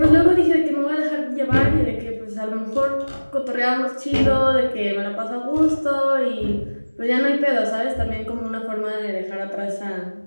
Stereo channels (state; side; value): inverted; both; correlation -1.00